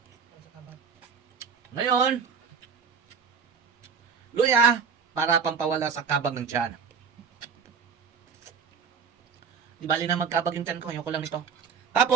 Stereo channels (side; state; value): left; quieter; 6.4 dB